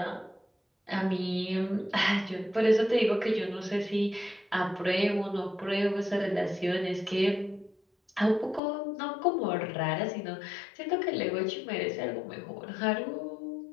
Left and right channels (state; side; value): drops out; right; at 8.6 s